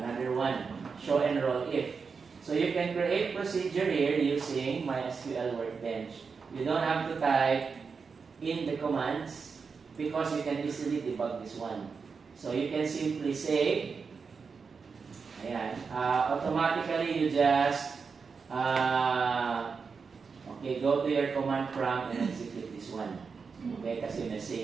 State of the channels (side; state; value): left; quieter; 5.3 dB